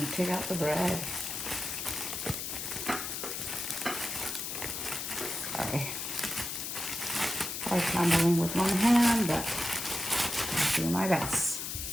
take out the bread. Sorry. I'm handling with one hand, but I'll do my best.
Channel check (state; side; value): noise; left; hiss, 4 dB below the sound